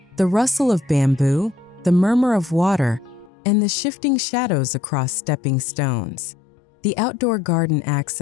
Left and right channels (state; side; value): drops out; right; at 3.3 s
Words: the rustle of bamboo, the murmur of water, and the shifting shadows across stepping stones. The outdoor garden acts